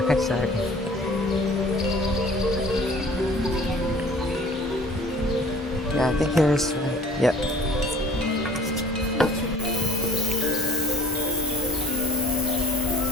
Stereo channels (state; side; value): normal; both; correlation 0.51